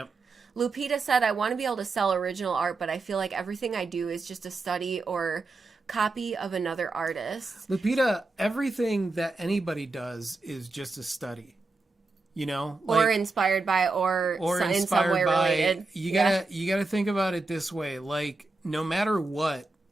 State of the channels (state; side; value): quieter; left; 3.5 dB